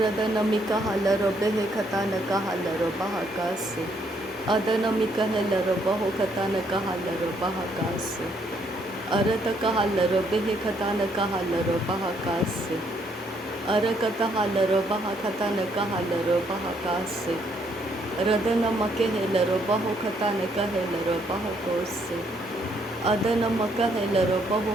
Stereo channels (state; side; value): normal; both; correlation 0.70